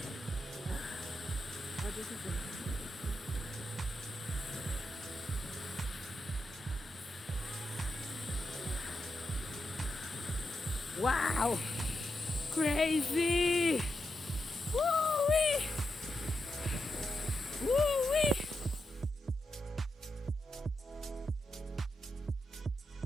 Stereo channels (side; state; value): both; normal; correlation 0.86